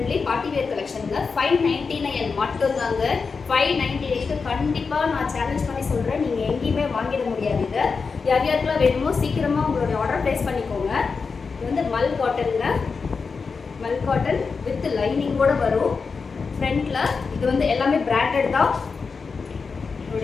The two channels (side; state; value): right; quieter; 5.0 dB